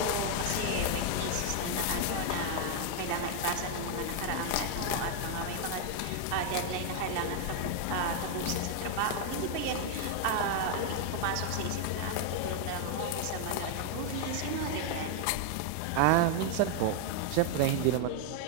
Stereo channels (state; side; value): different; both; correlation 0.00